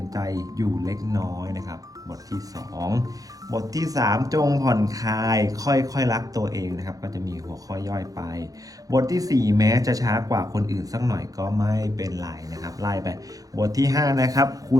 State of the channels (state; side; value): late; left; 0.17 ms